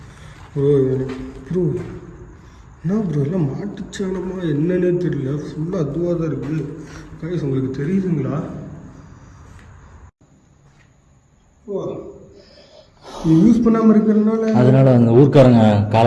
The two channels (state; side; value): identical; both; correlation 1.00